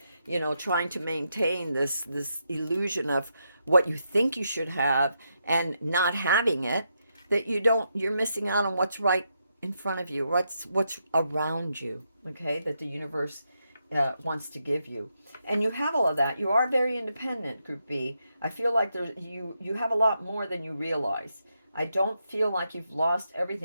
trying to maintain this illusion of what you think you should have and not having it, that you're missing out on what's right in front of you, what's around you, okay, that the universe wants to give you. And you have all of that. You are very independent, Group B. I feel like you have a lot more than you realize. I don't feel like you've lost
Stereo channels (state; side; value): inverted; both; correlation -0.82